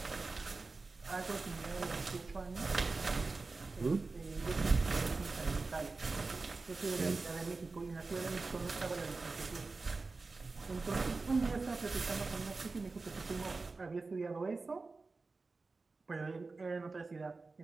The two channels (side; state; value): left; quieter; 3.9 dB